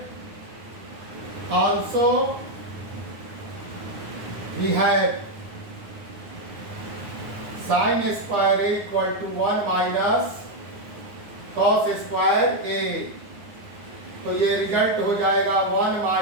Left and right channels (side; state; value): left; late; 9.7 ms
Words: also we have sin square A equal to 1 minus cos square A। तो ये result हो जाएगा 1